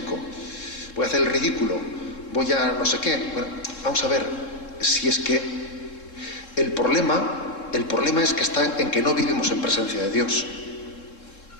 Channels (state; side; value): late; right; 3.7 ms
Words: voy a hacer el ridículo, voy a no sé qué. Bueno, vamos a ver, si es que el problema es que está en que no vivimos en presencia de Dios.